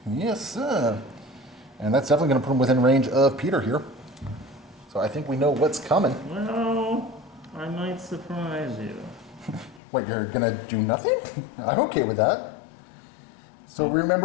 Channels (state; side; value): drops out; right; at 9.8 s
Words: Yes, sir. And that's definitely gonna put him within range of Peter here. So I think we know what's coming. Well, I might surprise you. What, you're gonna do nothing? I'm okay with that. So